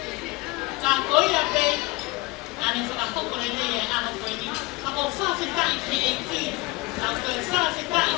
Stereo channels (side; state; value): right; quieter; 23.3 dB